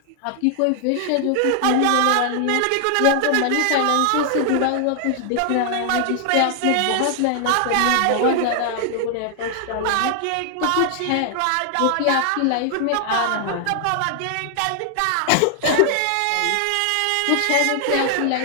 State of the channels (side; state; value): both; different; correlation 0.00